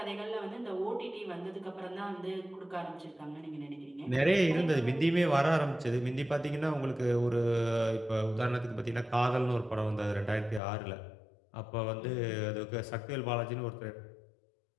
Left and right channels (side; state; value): right; drops out; at 10.6 s